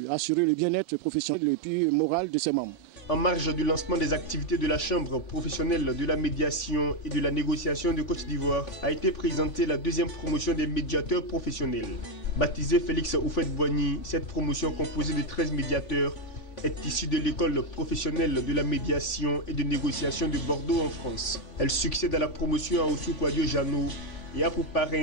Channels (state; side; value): late; right; 3.5 ms